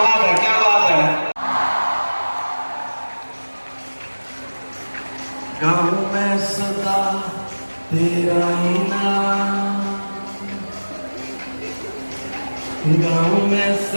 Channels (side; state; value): both; inverted; correlation -1.00